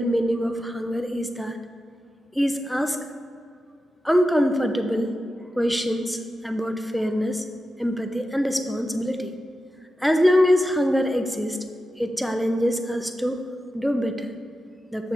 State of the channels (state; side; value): normal; both; correlation 0.91